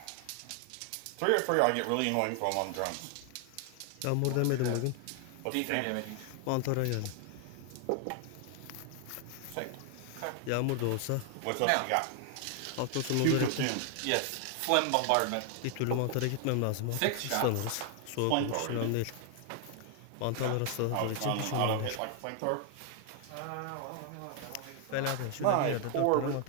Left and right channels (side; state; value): both; different; correlation 0.00